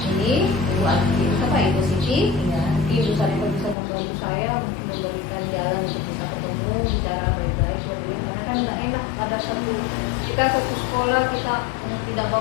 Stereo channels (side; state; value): right; drops out; at 3.8 s